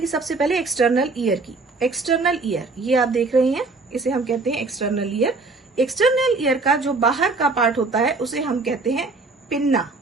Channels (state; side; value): quieter; left; 3.7 dB